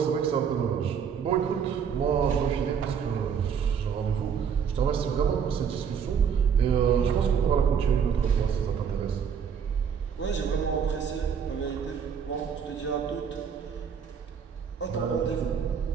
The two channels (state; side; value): quieter; left; 7.2 dB